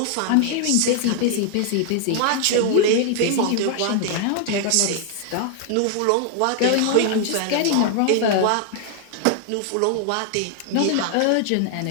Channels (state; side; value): different; both; correlation 0.00